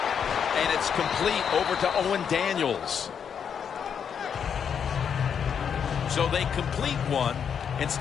it's complete over to Owen Daniels. So they complete one, and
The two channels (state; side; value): quieter; right; 7.5 dB